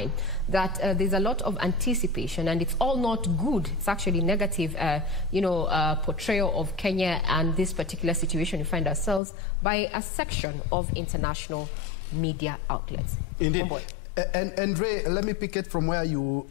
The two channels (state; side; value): drops out; right; at 9.2 s